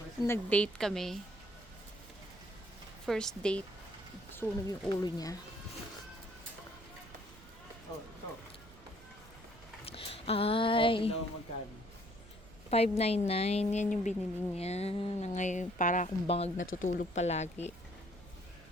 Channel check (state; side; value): noise; right; rumble, 20 dB below the sound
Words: Nag-date kami. First date. Sunog yung ulo niya. Oh, ito. Ay, Ito magkano? $5.99. Yan yung binili niya. Na ngayon, para akong bangag natutulog palagi.